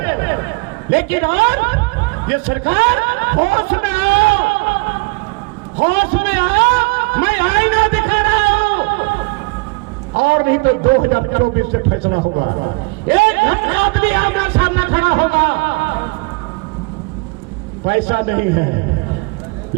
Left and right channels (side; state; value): left; quieter; 28.7 dB